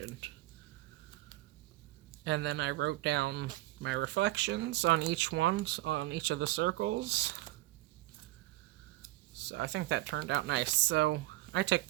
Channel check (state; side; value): quieter; left; 17.9 dB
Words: And then I wrote down my reflections on each of the circles. So I think that turned out nice. So I took